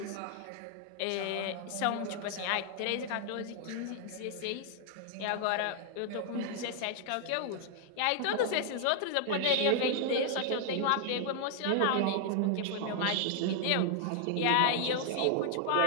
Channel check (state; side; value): different; both; correlation 0.00